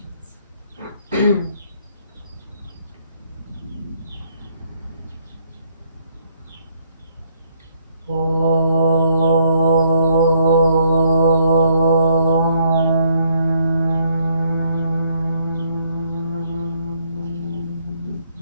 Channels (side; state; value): both; inverted; correlation -0.69